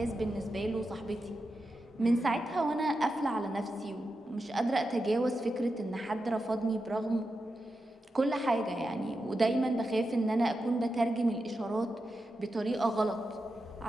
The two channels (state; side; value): normal; both; correlation 0.89